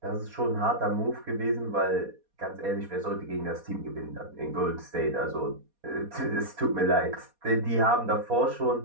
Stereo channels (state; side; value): late; left; 4.2 ms